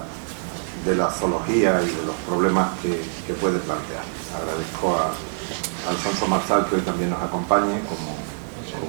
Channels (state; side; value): silent; left; digital silence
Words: la zoología y de los problemas que puede plantear. Agradezco a Alfonso Marzal que hoy también nos acompañe como